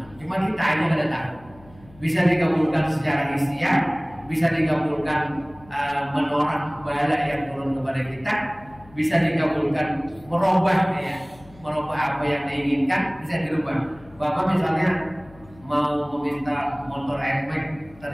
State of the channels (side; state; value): left; noise; hum, 24 dB below the sound